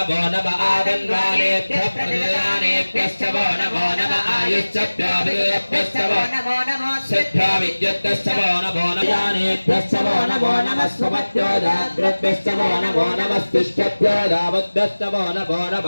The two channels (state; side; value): inverted; both; correlation -1.00